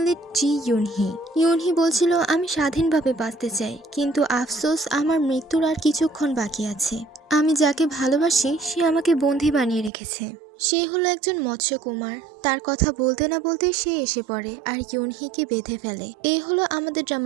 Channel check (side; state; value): left; drops out; at 9.9 s